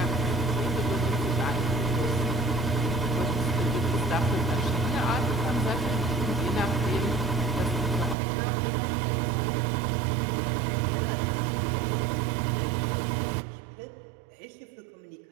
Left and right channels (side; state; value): left; drops out; at 8.2 s